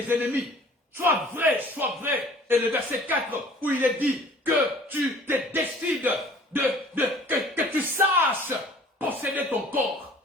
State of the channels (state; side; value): normal; both; correlation 0.50